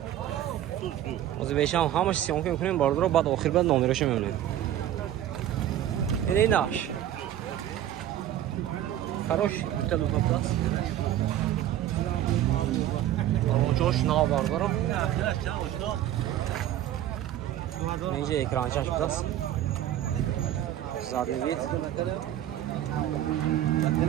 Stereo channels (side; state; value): left; quieter; 12.0 dB